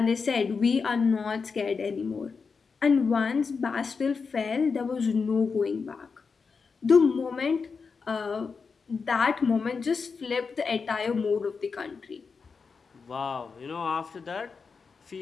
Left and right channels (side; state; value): right; quieter; 5.1 dB